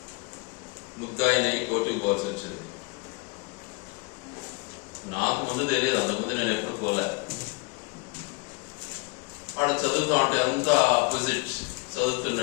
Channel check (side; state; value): right; quieter; 29.9 dB